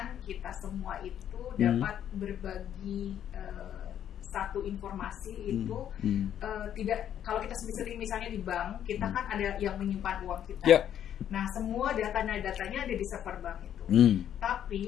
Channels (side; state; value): right; quieter; 10.1 dB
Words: kita semua itu dapat berbagi satu informasi itu tidak, kalau kita sendiri misalnya di bank kita kan ada yang menyimpan uang kita, nah semua datanya ada di server bank itu,